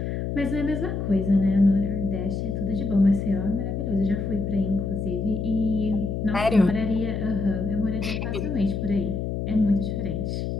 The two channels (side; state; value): left; noise; hum, 3 dB below the sound